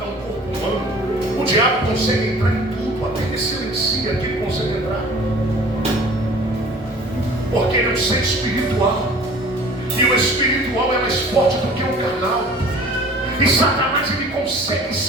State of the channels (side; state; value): both; normal; correlation 0.47